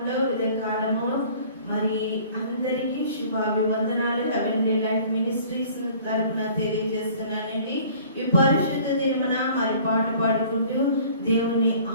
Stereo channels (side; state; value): both; inverted; correlation -0.51